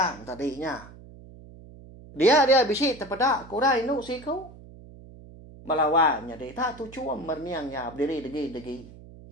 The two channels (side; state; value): right; noise; hum, 19 dB below the sound